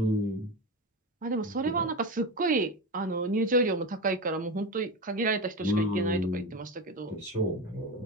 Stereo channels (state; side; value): normal; both; correlation 0.21